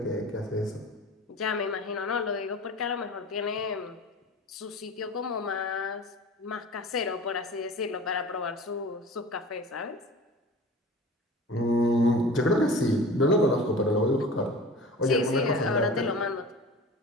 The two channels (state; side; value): normal; both; correlation 0.38